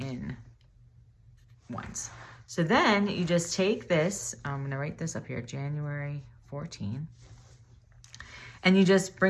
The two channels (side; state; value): both; identical; correlation 1.00